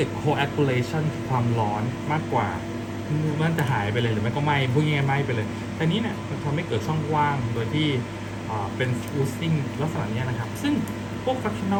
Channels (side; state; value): both; identical; correlation 1.00